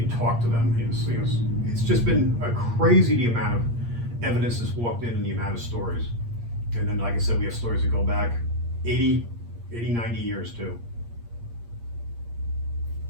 talk to them. It's just been a crazy the amount of evidence that's walked in and the amount of stories. And then, like I said, we have stories that go back 80, 90 years too.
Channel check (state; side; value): late; left; 8.6 ms